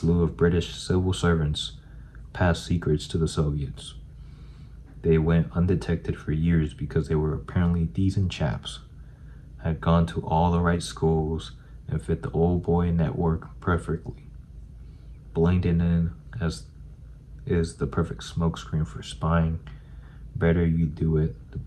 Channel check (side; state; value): both; identical; correlation 1.00